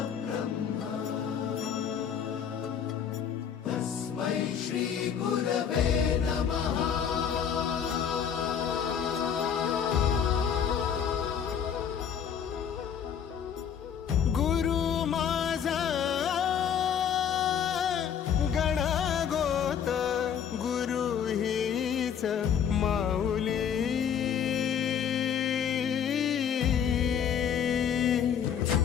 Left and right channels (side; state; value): right; quieter; 8.1 dB